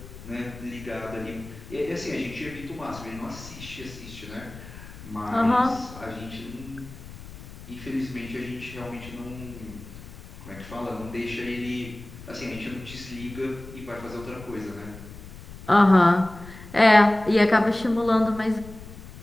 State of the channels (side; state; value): left; noise; rumble, 15 dB below the sound